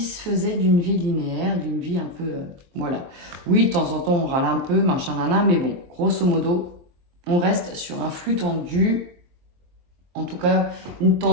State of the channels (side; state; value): left; late; 23 ms